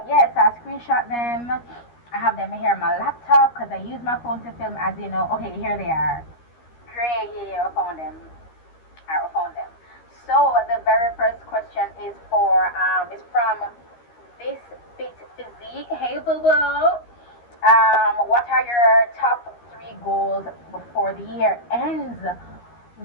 yes, I screenshot them. I have them here on my laptop because I use my phone to film, as you know. Okay, here they are. Great, yeah, I found them. I found them. So the very first question is from This Fit Physique. Hey, boo boo. What are your top 3 goals before the year ends?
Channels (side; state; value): right; late; 13 ms